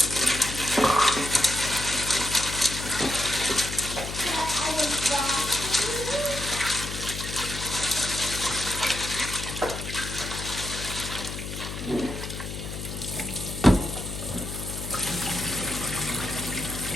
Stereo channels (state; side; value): noise; left; hum, 7 dB below the sound